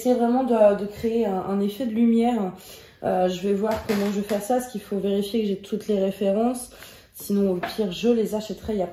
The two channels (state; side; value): identical; both; correlation 1.00